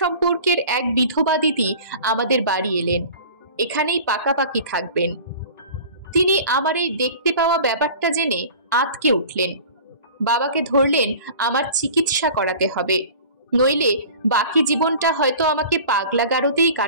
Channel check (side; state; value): both; inverted; correlation -0.41